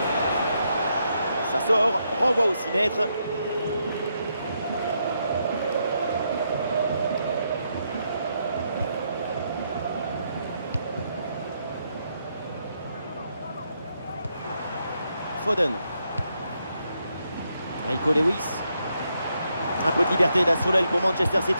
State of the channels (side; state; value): both; inverted; correlation -0.79